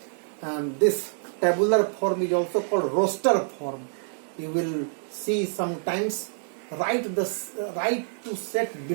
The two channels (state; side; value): silent; left; digital silence